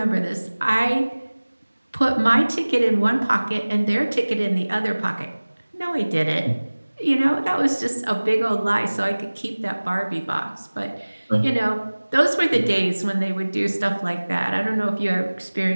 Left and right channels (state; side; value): inverted; both; correlation -1.00